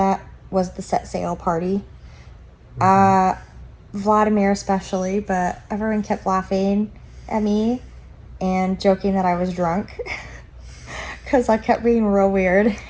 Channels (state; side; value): identical; both; correlation 1.00